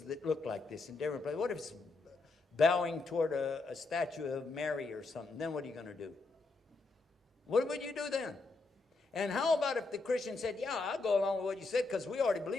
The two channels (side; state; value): right; quieter; 3.6 dB